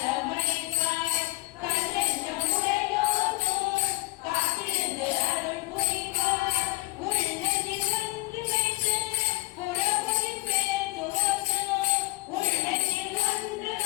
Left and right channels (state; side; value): quieter; right; 23.0 dB